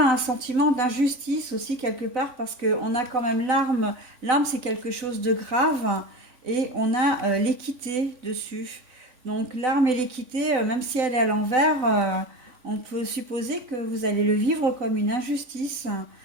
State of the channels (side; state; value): left; late; 3.5 ms